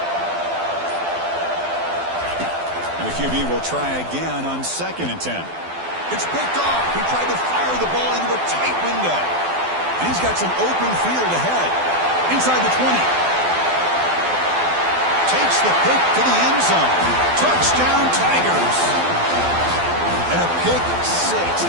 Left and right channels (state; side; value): late; left; 12 ms